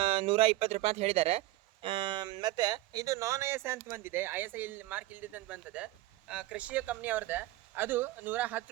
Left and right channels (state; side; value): quieter; left; 17.1 dB